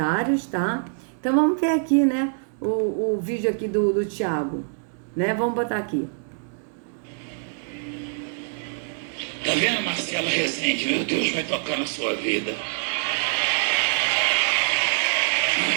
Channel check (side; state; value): left; silent; digital silence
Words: tá? Então vamos ver aqui, né, o vídeo aqui do Thiago, né? Vamos botar aqui. Tá vendo, Marcelo Rezende? Meu Deus, vai tocar na sua vida.